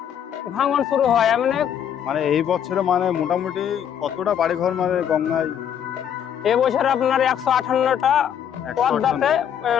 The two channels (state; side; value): quieter; right; 9.1 dB